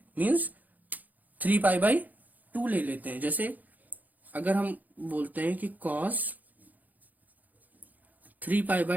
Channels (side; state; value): left; late; 0.081 ms